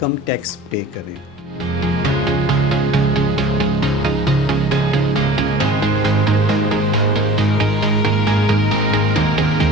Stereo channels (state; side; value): normal; both; correlation 0.43